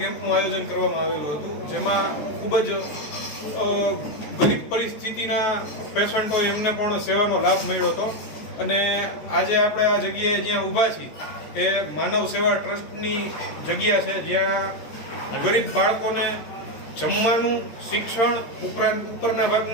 કેમ્પનું આયોજન કરવામાં આવેલું હતું, જેમાં ખૂબ જ ગરીબ પરિસ્થિતિના પેશન્ટો એમને પણ સેવાનો લાભ મળ્યો હતો. અને આજે આપણે આ જગ્યાએ જ્યાં ઊભા છીએ એ માનવ સેવા ટ્રસ્ટની જગ્યા છે, જ્યાં ગરીબ બાળકોને જમવાનું, શિક્ષણ ઉપરાંત ઉપરના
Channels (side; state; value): right; late; 13 ms